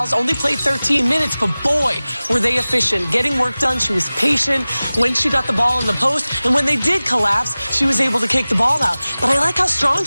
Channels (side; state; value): both; inverted; correlation -0.98